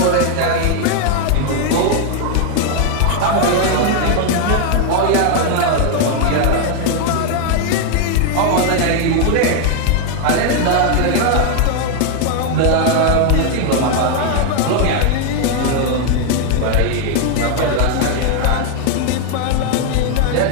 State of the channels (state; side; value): different; both; correlation 0.00